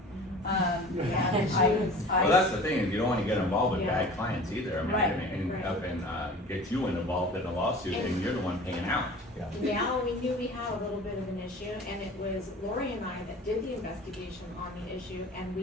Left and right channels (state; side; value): normal; both; correlation 0.41